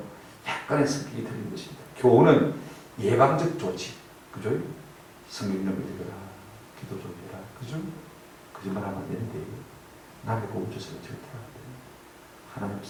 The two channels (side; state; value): both; identical; correlation 1.00